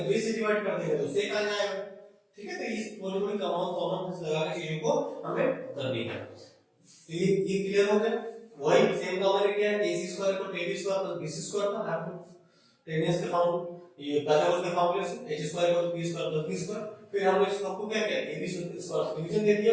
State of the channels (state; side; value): identical; both; correlation 1.00